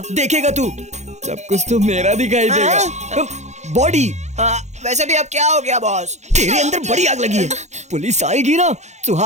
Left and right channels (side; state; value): left; late; 0.33 ms